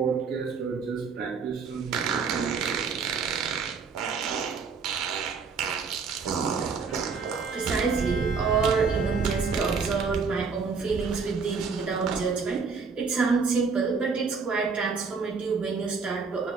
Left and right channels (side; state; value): left; quieter; 5.2 dB